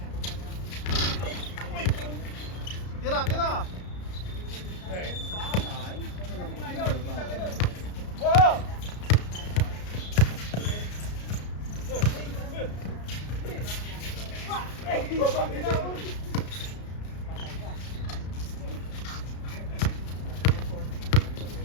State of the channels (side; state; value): right; late; 33 ms